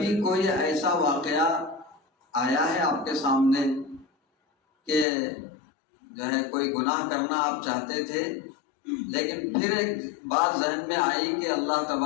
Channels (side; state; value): right; drops out; at 5.1 s